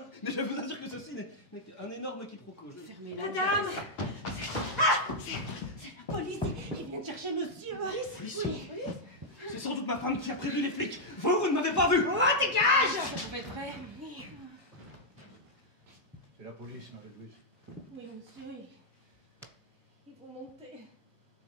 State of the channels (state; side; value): normal; both; correlation -0.04